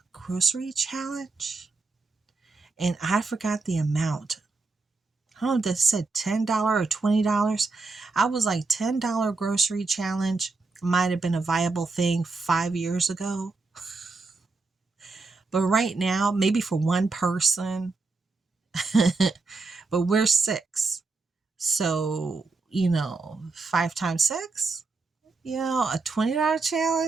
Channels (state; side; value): quieter; left; 3.8 dB